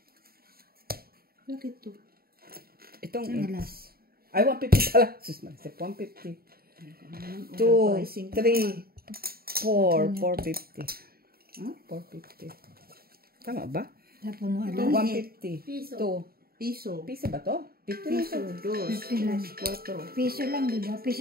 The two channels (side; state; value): left; late; 0.44 ms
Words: Bakit to? Itong. Alas. Ay, 150 pala. Sus, mag-isip. 150. 2, 3, 4, 450. Huh? 450. Tama ba? Tapos mo alas. 150. Piso. 2. Piso. Piso ba to? 50 na Piso, to. dos, Piso. cuatro. Piso lang, di ba?